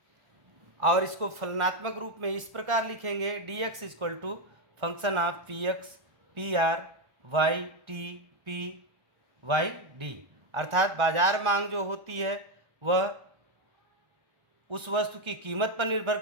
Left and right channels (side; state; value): left; late; 1.4 ms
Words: और इसको फलनात्मक रूप में इस प्रकार लिखेंगे, dx equal to function of px PR YT PYD। अर्थात बाजार मांग जो होती है वह उस वस्तु की कीमत पर निर्भर